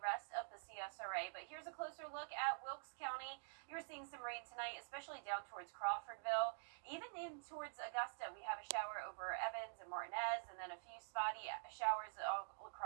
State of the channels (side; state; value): left; silent; digital silence